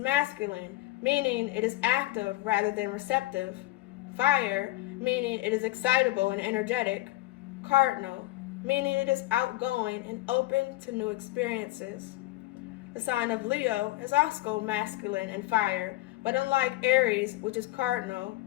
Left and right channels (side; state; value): right; quieter; 18.2 dB